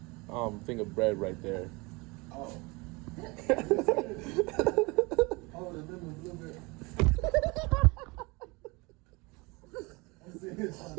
a thing of bread right there. Oh. Oh, the lemon blueberry. I'm sitting here trying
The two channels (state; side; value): quieter; left; 26.1 dB